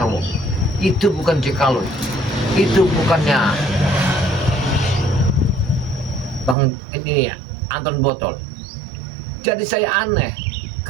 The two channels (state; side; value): drops out; left; at 6.6 s